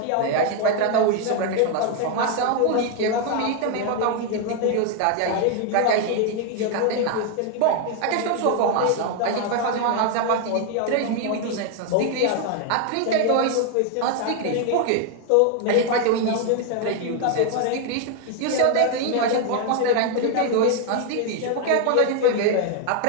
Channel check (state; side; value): different; both; correlation 0.01